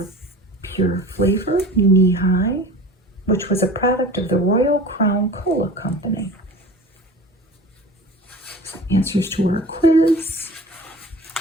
Pure Flavor, Knee High, which was a product of the Royal Crown Cola Company. Answers to our quiz.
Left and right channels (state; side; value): normal; both; correlation 0.39